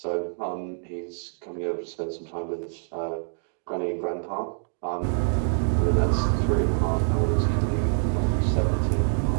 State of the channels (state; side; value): silent; left; 61 dB below the other